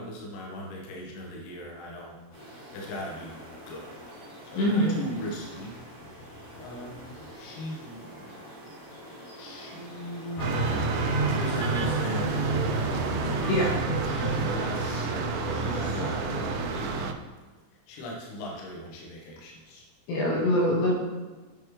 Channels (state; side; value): late; right; 24 ms